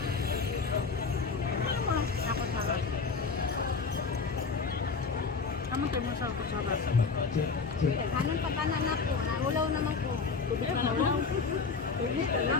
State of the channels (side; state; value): right; quieter; 4.8 dB